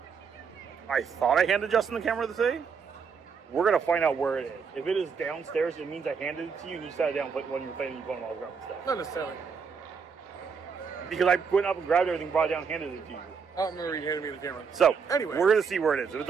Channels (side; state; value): left; quieter; 5.9 dB